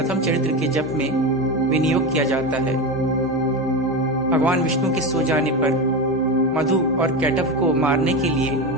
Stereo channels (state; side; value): normal; both; correlation 0.19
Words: चरित्र के जप में विनियोग किया जाता है। भगवान विष्णु के सो जाने पर मधु और कैटभ को मारने के लिए